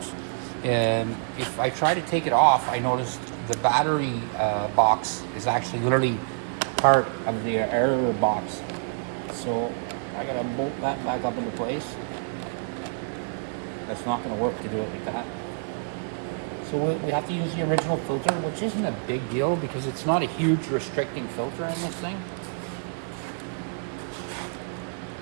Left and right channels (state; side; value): silent; left; digital silence